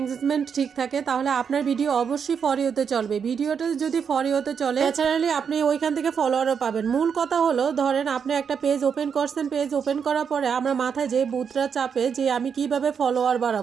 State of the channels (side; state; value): left; quieter; 6.8 dB